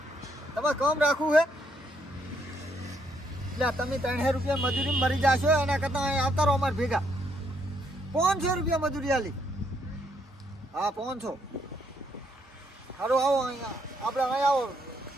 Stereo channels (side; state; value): both; normal; correlation 0.73